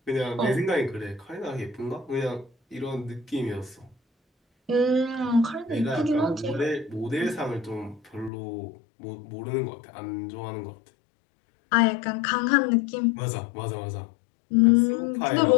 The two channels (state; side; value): drops out; right; at 8.3 s